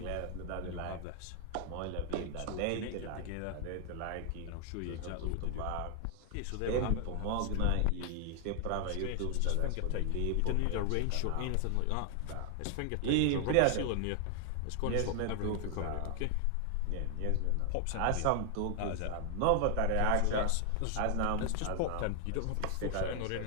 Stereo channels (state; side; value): different; both; correlation 0.00